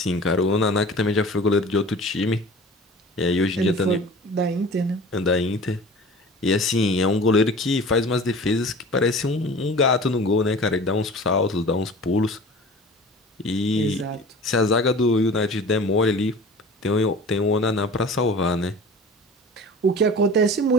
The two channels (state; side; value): normal; both; correlation 0.40